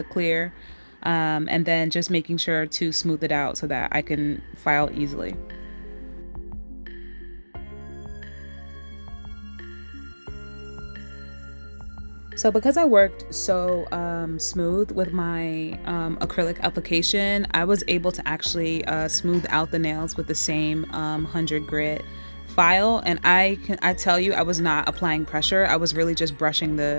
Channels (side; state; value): both; inverted; correlation -1.00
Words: clear, and then just making sure to smooth it out so that I can file easily. So because I worked so smooth with my acrylic application, I was able to actually smooth out the nails with the same 100 grit file. And I tell you, I was not applying pressure. I was really just brushing